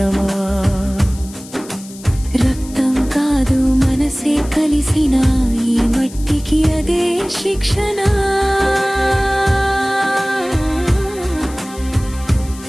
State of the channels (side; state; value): left; noise; hiss, 18 dB below the sound